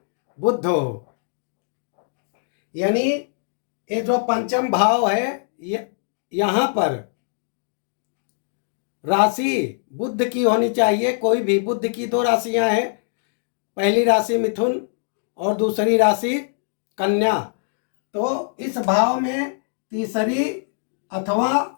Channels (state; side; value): silent; right; digital silence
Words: बुध हो। यानी ये जो पंचम भाव है, यहाँ पर राशि बुध की होनी चाहिए। कोई भी, बुध की 2 राशियां हैं, पहली राशि मिथुन और दूसरी राशि कन्या। तो इस भाव में तीसरी